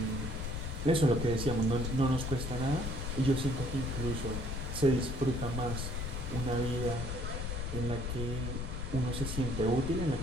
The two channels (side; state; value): left; noise; rumble, 3 dB below the sound